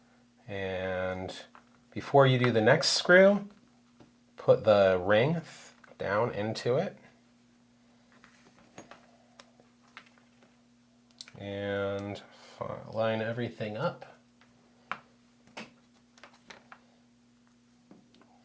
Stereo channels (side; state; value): both; identical; correlation 1.00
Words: And before you do the next screw, put the ring down into it. And line everything up.